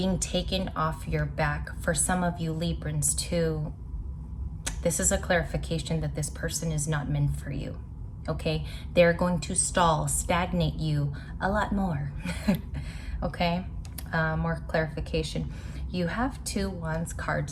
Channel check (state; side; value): identical; both; correlation 1.00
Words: taken off your back. For some of you Librans too, this is a clarification that this person is not meant for you. Okay, they're going to stall, stagnate you a lot more. Okay, more clarification. You have 2 Wands